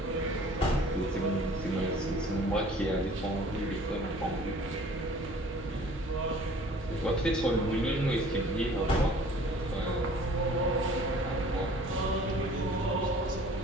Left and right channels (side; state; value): both; normal; correlation 0.50